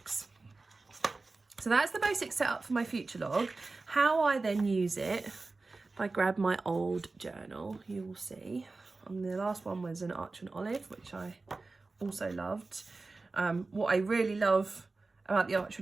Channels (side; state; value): left; quieter; 3.6 dB